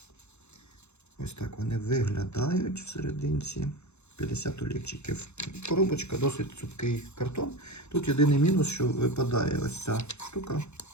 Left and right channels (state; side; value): late; right; 0.81 ms